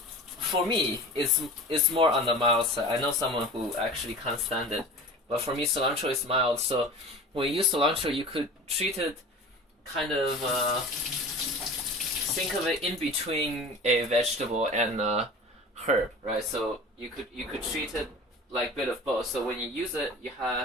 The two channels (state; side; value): normal; both; correlation 0.38